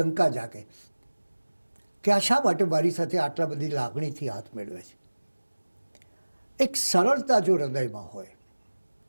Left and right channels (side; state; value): both; inverted; correlation -1.00